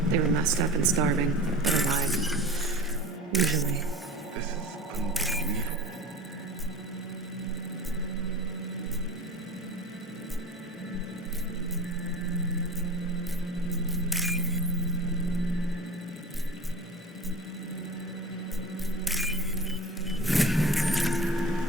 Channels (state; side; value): normal; both; correlation 0.36